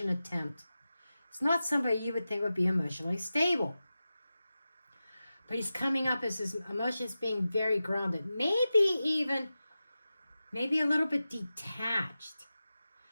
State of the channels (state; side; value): inverted; both; correlation -0.94